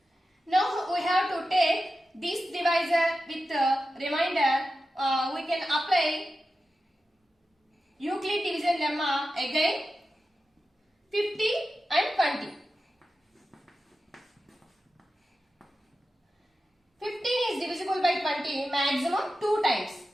Now we have to take this divisor with remainder. We can apply Euclid division lemma again. 50 and 20. 15 is divisible by 20 maximum 2 times.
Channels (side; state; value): both; normal; correlation 0.92